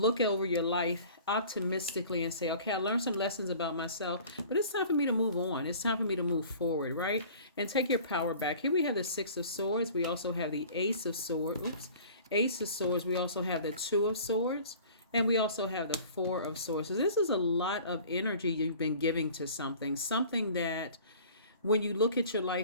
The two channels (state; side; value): inverted; both; correlation -0.46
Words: over your life optimistically and say, okay, I learned some lessons about myself, but it's time for me to move on. It's time for me to move forward, right? And take your power back. Here we have the Six of Swords. We also have the Ace of Swords. Ace of Swords. We also have the Two of Swords. And we also have the Four of Swords. So this is a lot of energy you've been giving to something that when you look at your